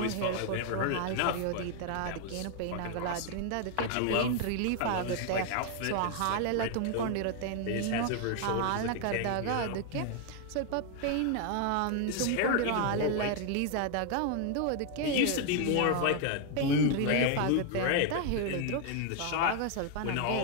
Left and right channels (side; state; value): both; different; correlation 0.00